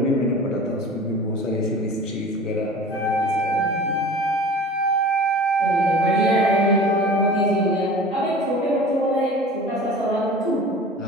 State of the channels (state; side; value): normal; both; correlation 0.40